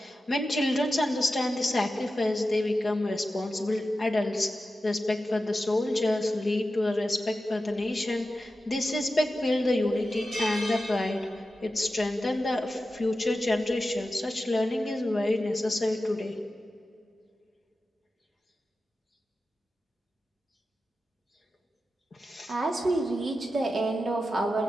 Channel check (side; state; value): both; normal; correlation 0.92